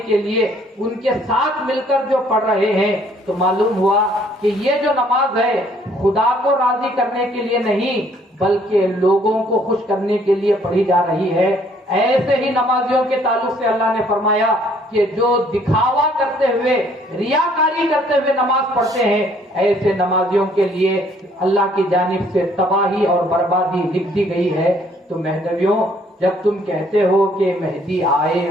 کے لیے ان کے ساتھ مل کر جو پڑھ رہے ہیں تو معلوم ہوا کہ یہ جو نماز ہے خدا کو راضی کرنے کے لیے نہیں بلکہ لوگوں کو خوش کرنے کے لیے پڑھی جا رہی ہے۔ ایسے ہی نمازیوں کے تعلق سے اللہ نے فرمایا کہ جو دکھاوا کرتے ہوئے ریاکاری کرتے ہوئے نماز پڑھتے ہیں ایسے نمازیوں کے لیے اللہ کی جانب سے تباہی اور بربادی لکھ دی گئی ہے۔ تو مہدویوں، جب تم کہتے ہو کہ مہدی آئے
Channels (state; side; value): normal; both; correlation 0.62